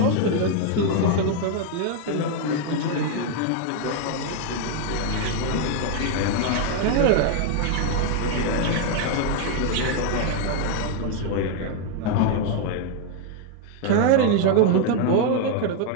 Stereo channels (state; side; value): different; both; correlation 0.01